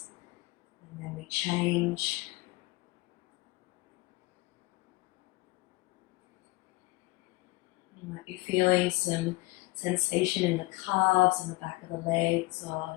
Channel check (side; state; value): right; quieter; 22.3 dB